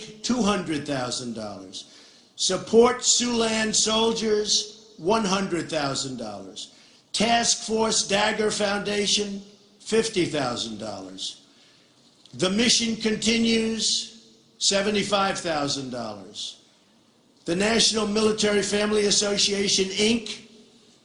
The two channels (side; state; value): both; identical; correlation 1.00